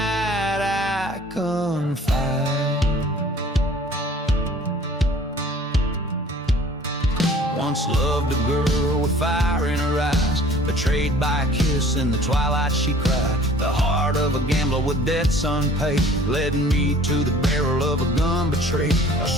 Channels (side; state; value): both; normal; correlation 0.50